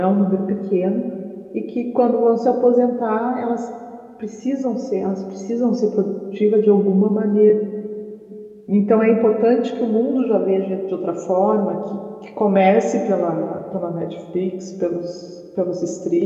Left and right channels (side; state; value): both; identical; correlation 1.00